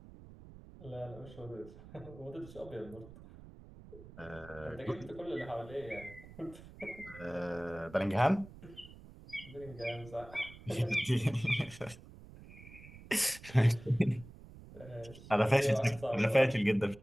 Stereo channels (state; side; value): noise; right; rumble, 18 dB below the sound